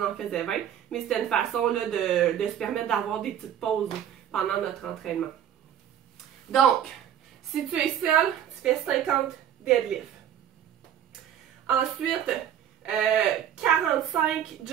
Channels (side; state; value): left; quieter; 10.0 dB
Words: en faisait 20. Mais c'était une façon là, de se permettre d'avoir des petites pauses pendant notre entraînement. Donc, si tu es seul, tu fais 50 deadlifts. Ensuite, 45